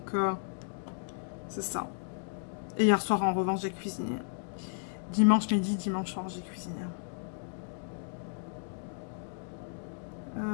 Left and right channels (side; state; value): right; silent; digital silence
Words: c'est ça. Et hier soir, en revanche, j'ai cuisiné. Dimanche midi, dimanche soir, j'ai cuisiné.